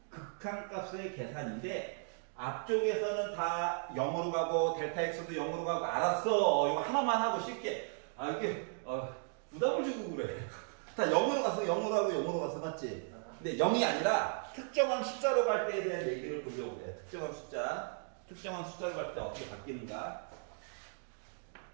극한값의 계산인데 앞쪽에서는 다 0으로 가고 델타 x도 0으로 가고 알았어. 이거 하나만 하고 쉽게. 이게 부담을 주고 그래. 다 0으로 가서 0으로 가서 맞지? 근데 0이 아니라 특정한 숫자로 갈 때에 대한 얘기를 보려고 해. 특정한 숫자로 갈 때 어떻게 바뀌는가?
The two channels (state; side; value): silent; left; 54 dB below the other